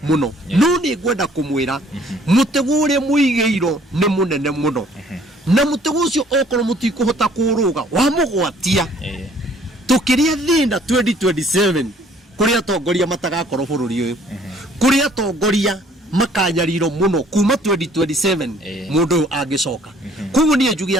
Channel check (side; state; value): both; normal; correlation 0.58